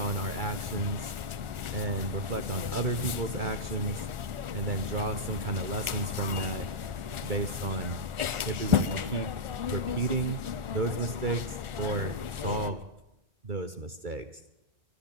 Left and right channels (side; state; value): left; late; 1.4 ms